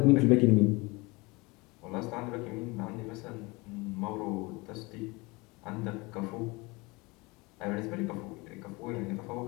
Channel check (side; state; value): right; quieter; 25.1 dB